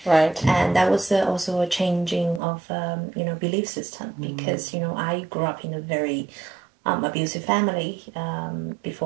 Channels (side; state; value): left; drops out; at 2.4 s